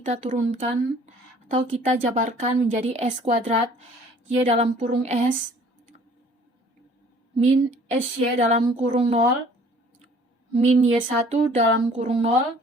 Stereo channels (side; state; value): both; normal; correlation 0.54